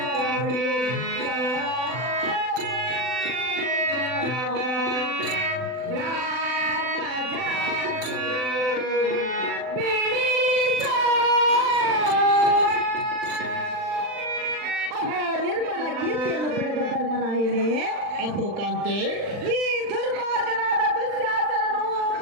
ನಿರ್ಮಲ ಕೀರ್ತಿಯನ್ನು ಪಡೆದ ಧರ್ಮರಾಯನೇ, ಅಪ್ಪು ಕಾಂತೆ, ಈ ದುರ್ಮಾರ್ಗನಾದ ದುಶ್ಯಾಸನನು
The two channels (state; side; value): late; left; 40 ms